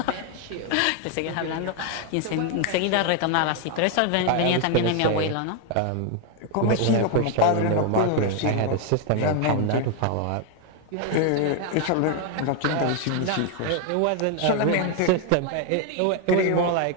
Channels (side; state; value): both; different; correlation 0.01